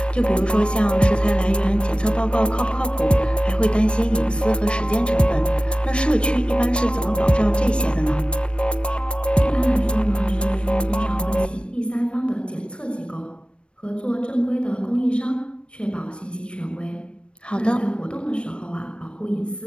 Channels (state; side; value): late; right; 0.058 ms